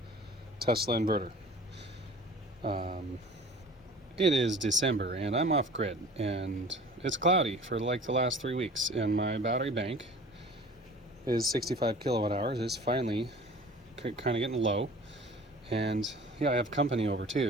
Tesla inverter. It is December and I'm off grid and it's cloudy for like the last 3 weeks, and my battery bank is 65 kilowatt hours. It's finally kind of getting low, and yeah, I have company over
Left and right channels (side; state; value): both; normal; correlation 0.43